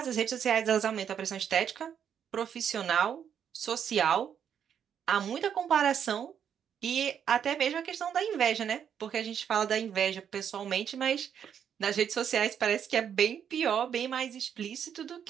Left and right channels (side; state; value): left; quieter; 8.4 dB